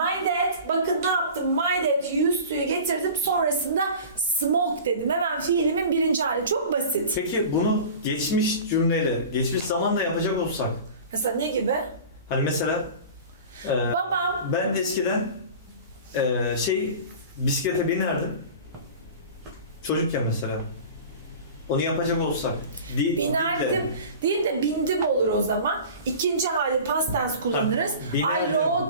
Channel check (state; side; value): inverted; both; correlation -0.38